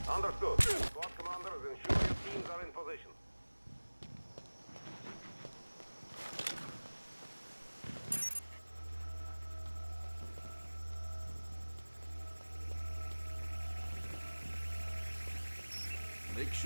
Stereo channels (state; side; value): inverted; both; correlation -1.00